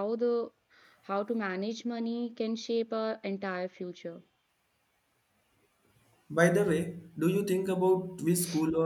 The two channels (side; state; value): both; identical; correlation 1.00